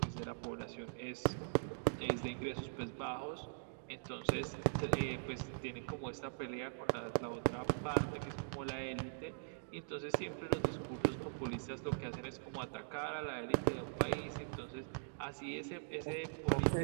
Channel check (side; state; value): left; silent; digital silence